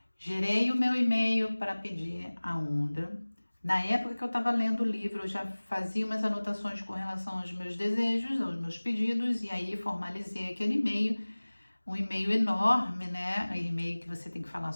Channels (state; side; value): inverted; both; correlation -1.00